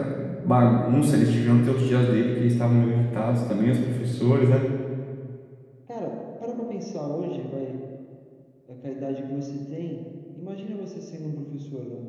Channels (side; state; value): both; identical; correlation 1.00